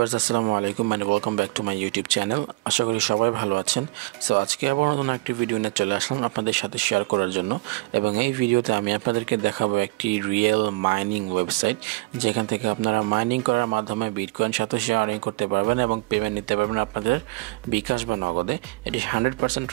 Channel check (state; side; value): quieter; left; 24.7 dB